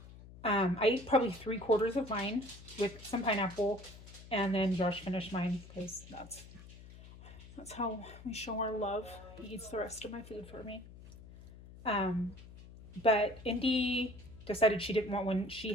I ate probably 3/4 of mine with some pineapple, and then Josh finished mine because that's how we show our love. He eats the rest of my food for me. But Indy decided she didn't want one. She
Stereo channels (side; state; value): left; noise; hum, 17 dB below the sound